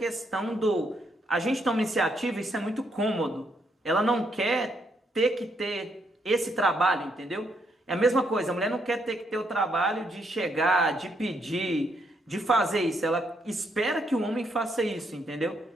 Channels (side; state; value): both; normal; correlation 0.75